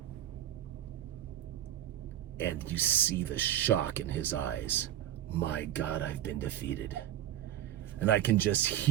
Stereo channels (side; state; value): left; quieter; 12.0 dB